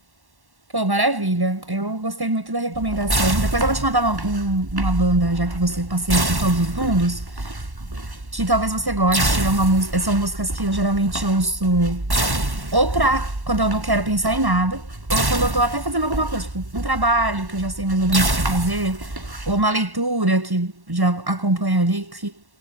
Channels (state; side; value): late; left; 1.1 ms